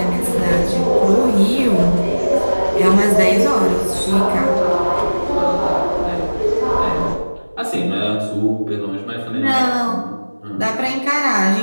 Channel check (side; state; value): both; inverted; correlation -1.00